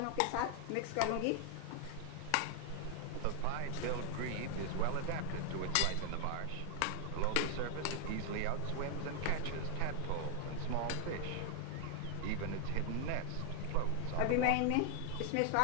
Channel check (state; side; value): different; both; correlation 0.00